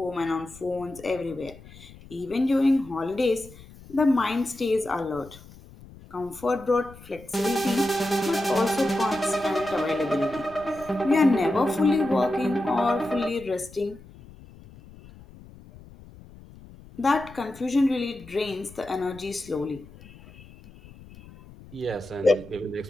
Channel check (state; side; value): noise; left; rumble, 20 dB below the sound